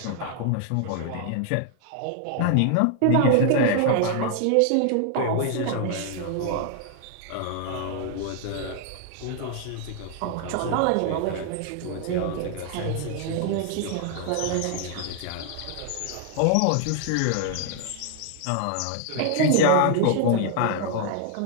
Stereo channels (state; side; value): different; both; correlation 0.00